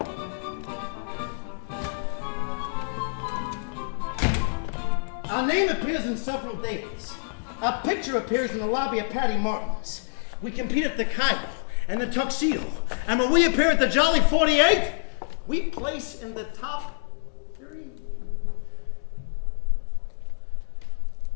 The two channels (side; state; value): right; silent; digital silence